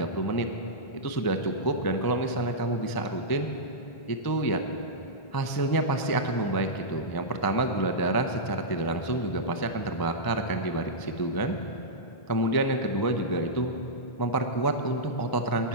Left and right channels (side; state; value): right; late; 1.0 ms